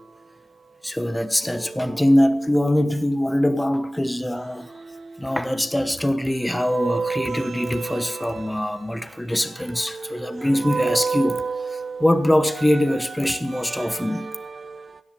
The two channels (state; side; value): normal; both; correlation 0.97